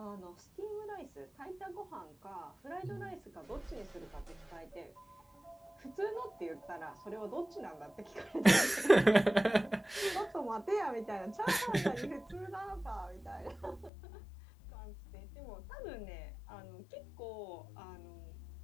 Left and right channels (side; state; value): right; drops out; at 13.9 s